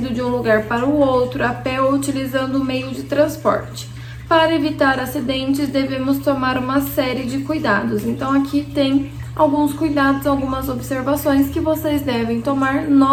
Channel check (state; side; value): identical; both; correlation 1.00